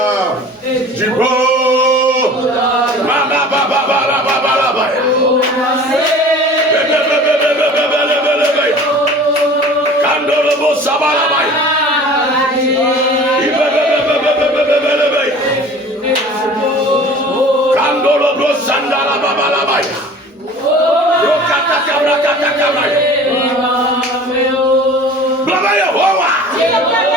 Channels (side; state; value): both; normal; correlation 0.44